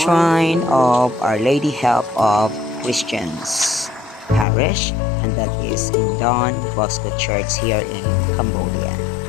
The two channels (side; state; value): right; drops out; at 4.5 s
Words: of Our Lady Help of Christians Parish, and that is in Don Bosco Church here in Cambodia.